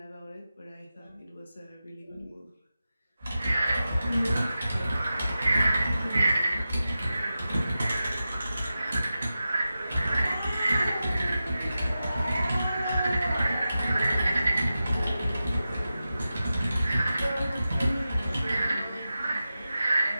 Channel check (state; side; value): inverted; both; correlation -0.93